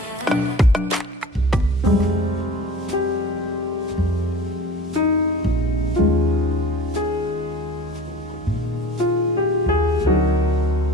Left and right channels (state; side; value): normal; both; correlation 0.40